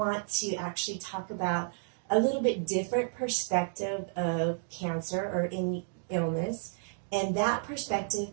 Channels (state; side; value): silent; left; digital silence